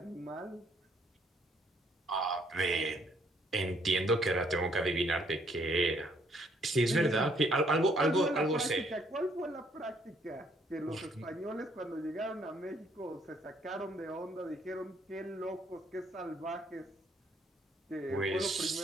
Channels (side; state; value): both; normal; correlation 0.67